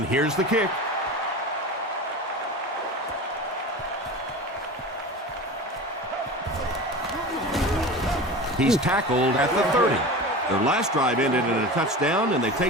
here's the kick. He's tackled at the 30. Their last drive ended in a touchdown, and they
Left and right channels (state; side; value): normal; both; correlation 0.32